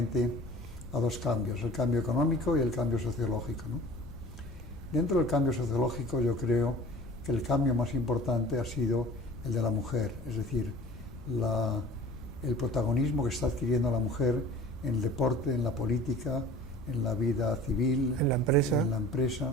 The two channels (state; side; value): noise; left; rumble, 15 dB below the sound